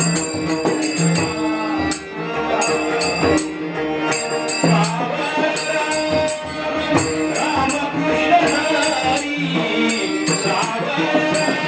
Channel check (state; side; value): identical; both; correlation 1.00